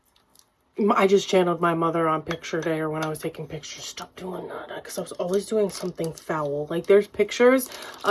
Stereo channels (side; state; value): both; identical; correlation 1.00